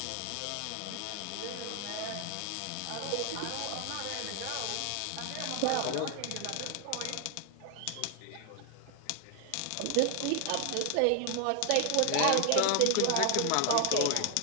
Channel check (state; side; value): different; both; correlation 0.00